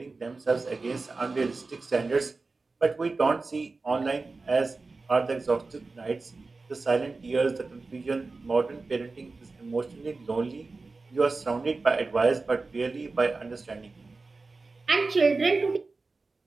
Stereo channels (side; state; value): left; quieter; 3.8 dB